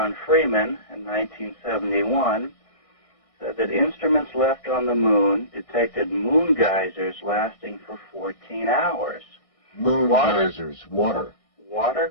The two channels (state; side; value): late; right; 1.6 ms